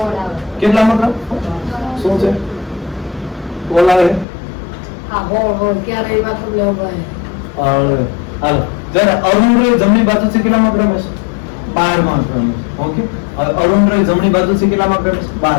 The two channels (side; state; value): right; drops out; at 4.2 s